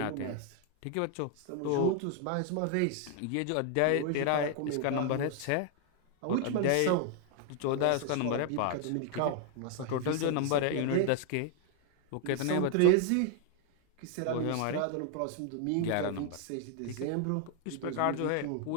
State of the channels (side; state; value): both; different; correlation 0.01